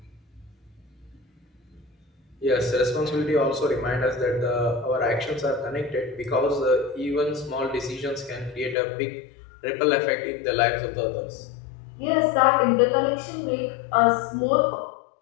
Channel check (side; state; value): right; drops out; at 8.8 s